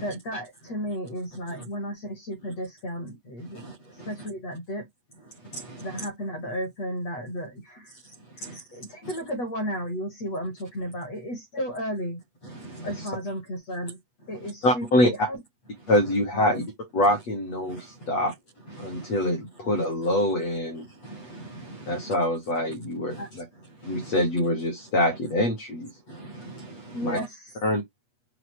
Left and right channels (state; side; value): late; right; 8.2 ms